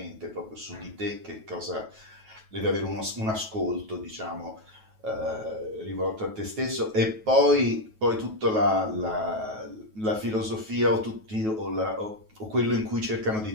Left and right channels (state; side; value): late; left; 9.3 ms